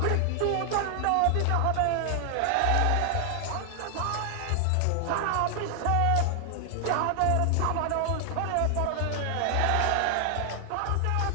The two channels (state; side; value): different; both; correlation 0.00